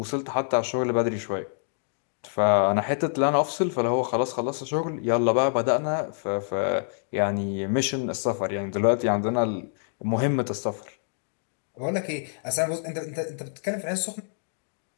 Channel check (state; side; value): silent; right; digital silence